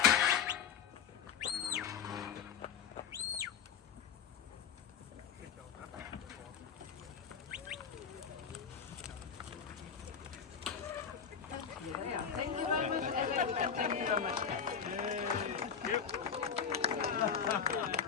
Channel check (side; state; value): right; quieter; 7.1 dB